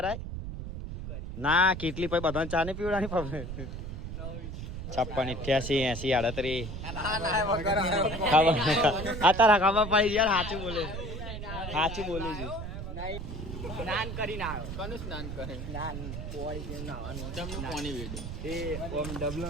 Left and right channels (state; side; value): noise; right; rumble, 7 dB below the sound